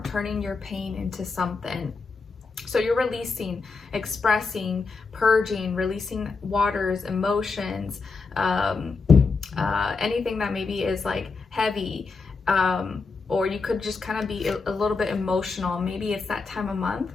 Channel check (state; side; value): quieter; right; 4.4 dB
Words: turning your pain into something. So you're releasing, expressing, purging, releasing waters, emotions, anything that maybe is like heavy, or you could just kind of be a little bit emotional. Maybe it's that time of month